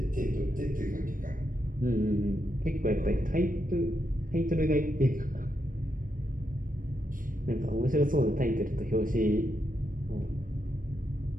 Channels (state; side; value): late; left; 0.40 ms